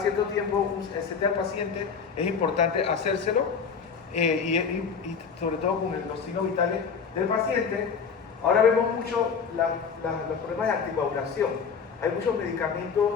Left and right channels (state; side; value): quieter; right; 6.0 dB